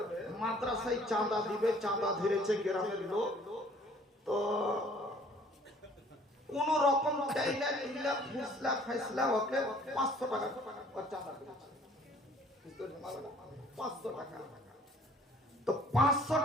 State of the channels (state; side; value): normal; both; correlation 0.56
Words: মাদ্রাসায় চাঁদা দিবে, চাঁদা ধরেছে গ্রামের লোক, তো কোন রকম চাইলা চিল্লা ফুসলা ফাইসলা ওকে 500 টাকা চাঁদা দিয়েছে, 500 টাকা। তো 500